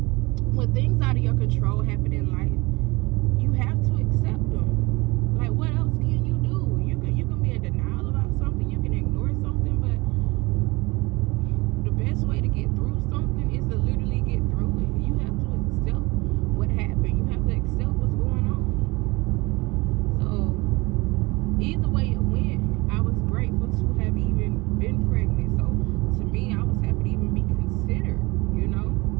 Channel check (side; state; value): left; quieter; 23.7 dB